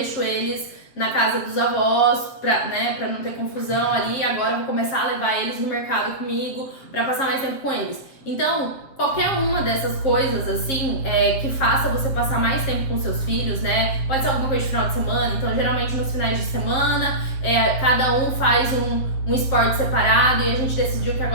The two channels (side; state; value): right; late; 7.6 ms